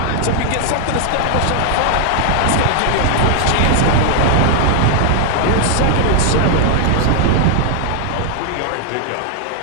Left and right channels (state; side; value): different; both; correlation 0.00